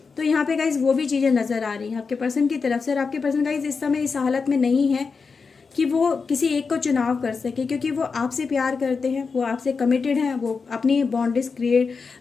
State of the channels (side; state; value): right; quieter; 5.0 dB